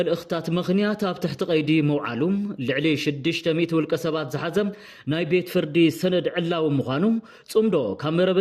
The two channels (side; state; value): both; identical; correlation 1.00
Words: ምኽንያት ኣብ ትሕቲ ቀይዲ መውዓሉም ልዕሊ 600 ውልቀ ሰባት ዝሓዘም ናይ ቤት ፍርዲ ሰነድ ዕላው ምዃኑ ጽምዶ